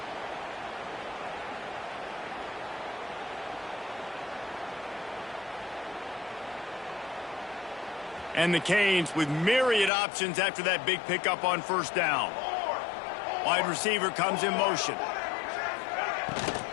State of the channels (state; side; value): drops out; right; at 9.9 s